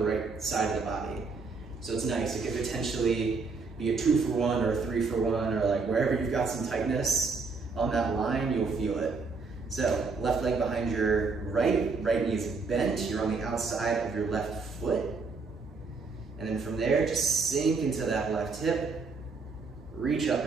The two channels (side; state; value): left; quieter; 4.4 dB